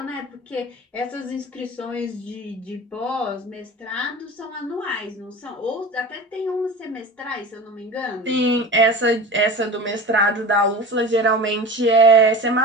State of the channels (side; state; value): both; normal; correlation 0.34